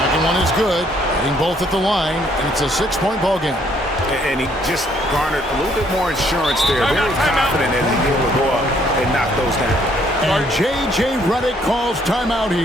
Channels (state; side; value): normal; both; correlation 0.66